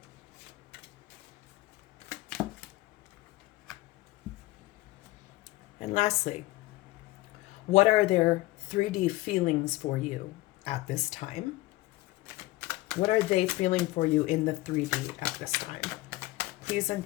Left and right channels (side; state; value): right; quieter; 19.2 dB